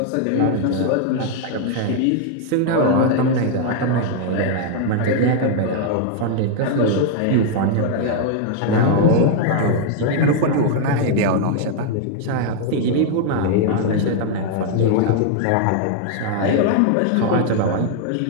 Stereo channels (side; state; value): both; different; correlation 0.00